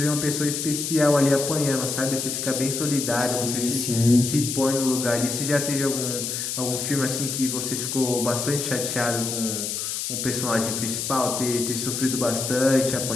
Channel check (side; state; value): left; noise; hiss, 3 dB below the sound